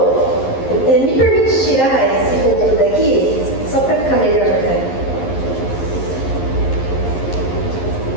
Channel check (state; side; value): late; right; 11 ms